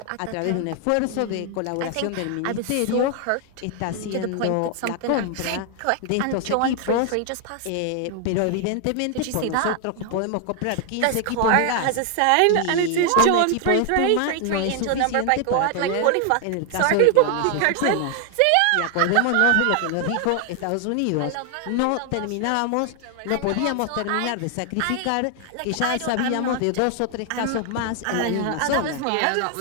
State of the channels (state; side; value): different; both; correlation 0.00